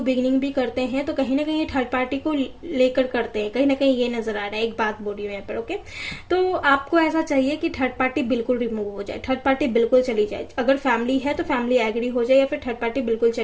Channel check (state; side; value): identical; both; correlation 1.00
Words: बिगिनिंग भी करते हैं तो कहीं ना कहीं थर्ड पार्टी को लेकर करते हैं, कहीं ना कहीं ये नजर आ रहा है। एक बात बोल रही हूँ यहाँ पर, ओके। तो आपको ऐसा चाहिए कि थर्ड पार्टी बिल्कुल रिमूव हो जाए, थर्ड पार्टी बिल्कुल चली जाए। अगर फैमिली है तो फैमिली एग्री हो जाए या फिर थर्ड पार्टी बिल्कुल